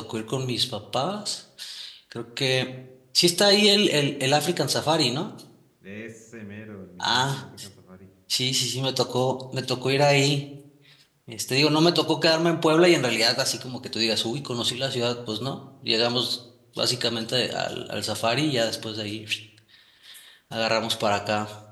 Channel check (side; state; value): both; identical; correlation 1.00